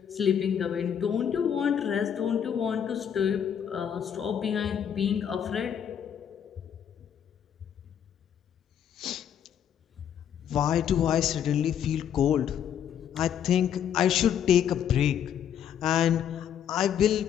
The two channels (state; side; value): quieter; right; 9.0 dB